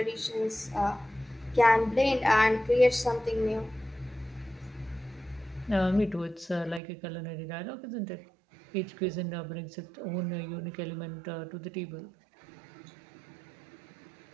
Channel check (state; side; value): drops out; left; at 6.8 s